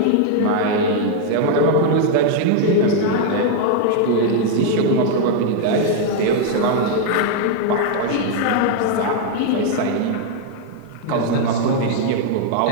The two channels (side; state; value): both; different; correlation 0.00